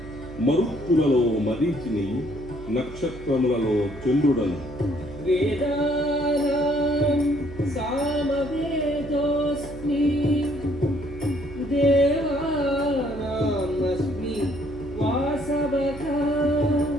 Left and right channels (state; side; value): noise; right; hum, 14 dB below the sound